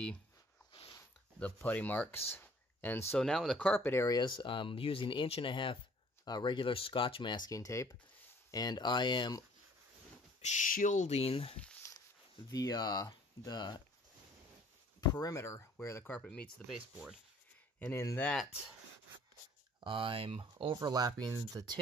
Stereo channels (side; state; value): both; normal; correlation 0.55